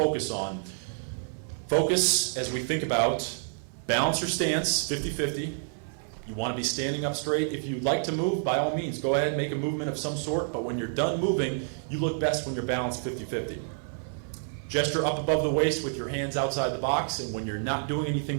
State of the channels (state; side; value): silent; left; 59 dB below the other